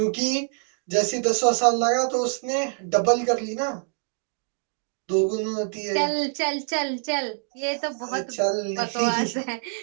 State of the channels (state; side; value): silent; left; digital silence